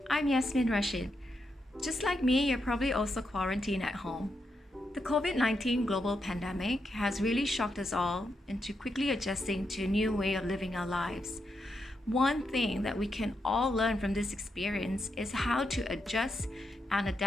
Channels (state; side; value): normal; both; correlation 0.83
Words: I'm Yasmin Rashid. Just like me, you're probably also quarantined at home. The COVID 19 global pandemic has really shocked us all into quickly adjusting to a new way of living our lives. One thing that we can all learn from this experience is how to adjust and